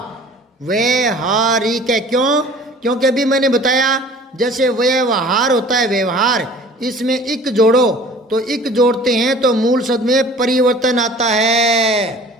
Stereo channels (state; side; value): normal; both; correlation 0.47